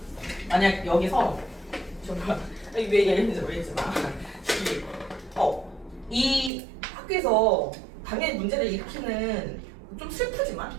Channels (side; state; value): left; drops out; at 6.5 s